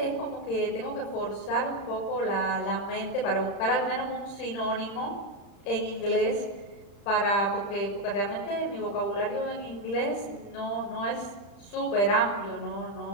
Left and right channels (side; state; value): right; late; 35 ms